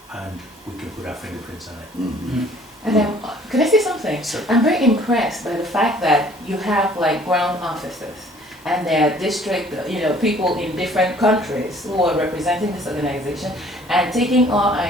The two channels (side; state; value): both; normal; correlation 0.55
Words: and we can put our fingerprints on it. Mhm. And then, can I say something? Sure. I'm very impressed by the fact that you have like ground officers and there are district, people in different countries who are representing this organization and taking our